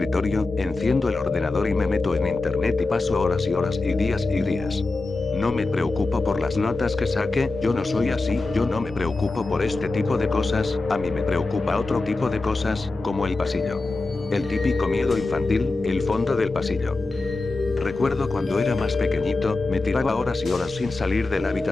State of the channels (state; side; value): quieter; right; 3.4 dB